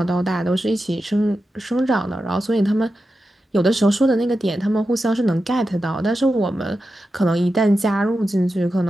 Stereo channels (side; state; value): both; normal; correlation 0.91